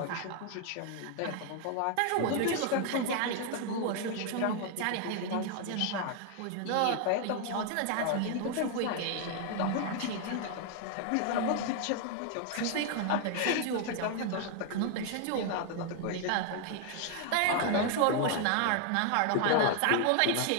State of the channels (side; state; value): both; different; correlation 0.00